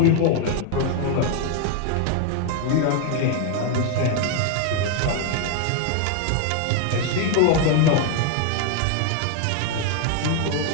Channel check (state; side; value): different; both; correlation 0.01